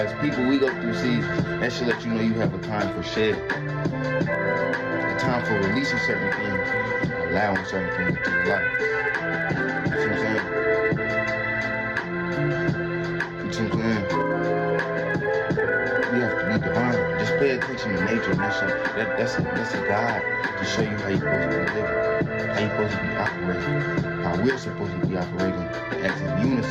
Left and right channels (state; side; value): identical; both; correlation 1.00